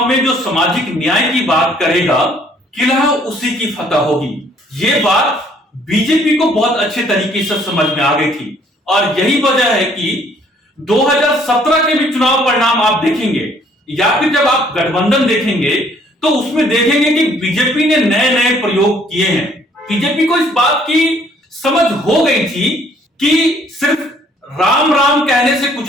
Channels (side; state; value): both; normal; correlation 0.62